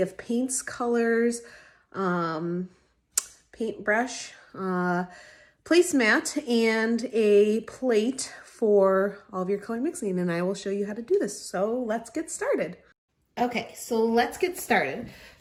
of paints, colors, paintbrush, placemat, and a plate for all of your color mixing, and I will show you how to do this. So let's get started. Okay, so let's get started.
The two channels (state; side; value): identical; both; correlation 1.00